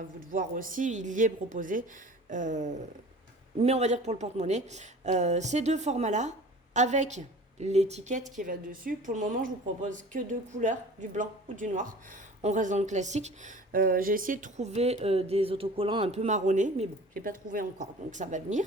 vous de voir aussi, il y est proposé. Mais on va dire que pour le porte-monnaie, ces 2 formats-là, avec l'étiquette qui va dessus. Pour le moment, je vous propose que 2 couleurs, du blanc ou du noir. On reste dans le classique. J'ai essayé de trouver des autocollants un peu marronnés, mais bon, je n'ai pas trouvé encore, donc ça va venir.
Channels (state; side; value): normal; both; correlation 0.43